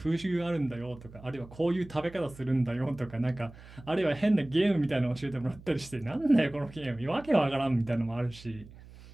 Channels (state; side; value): noise; right; hum, 19 dB below the sound